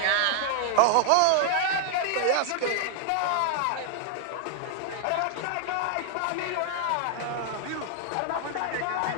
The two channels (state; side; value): different; both; correlation 0.00